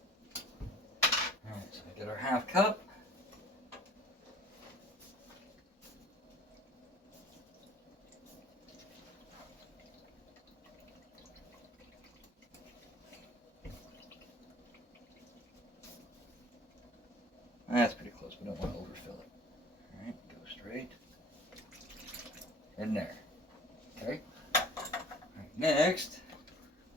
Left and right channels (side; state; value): both; normal; correlation 0.49